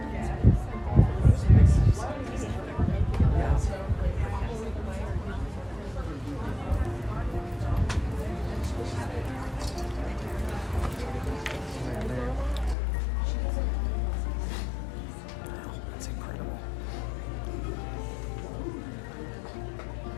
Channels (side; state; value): right; drops out; at 12.8 s